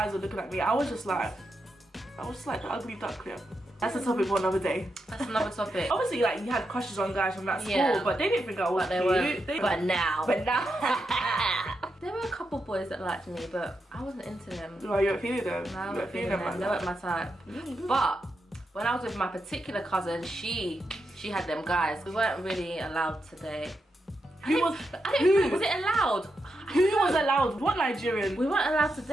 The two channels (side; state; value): both; normal; correlation 0.85